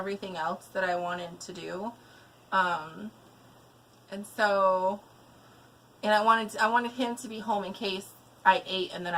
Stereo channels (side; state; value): both; identical; correlation 1.00